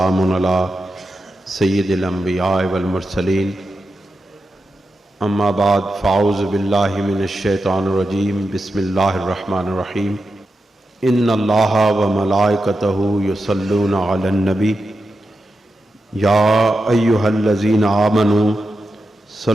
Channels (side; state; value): both; normal; correlation 0.89